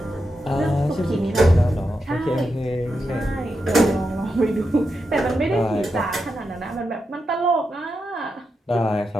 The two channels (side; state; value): both; normal; correlation 0.87